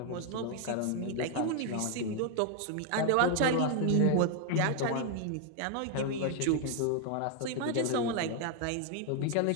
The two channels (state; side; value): different; both; correlation 0.00